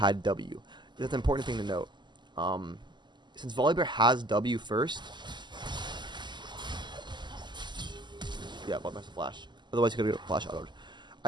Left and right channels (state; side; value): late; left; 0.21 ms